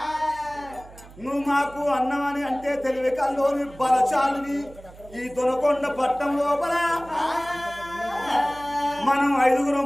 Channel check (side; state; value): right; noise; hum, 20 dB below the sound